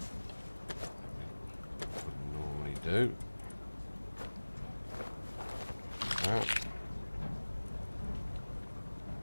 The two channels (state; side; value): inverted; both; correlation -1.00